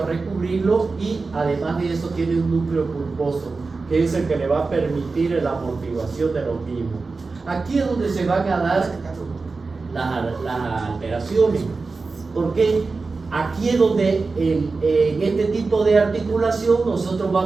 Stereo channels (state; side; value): quieter; left; 4.1 dB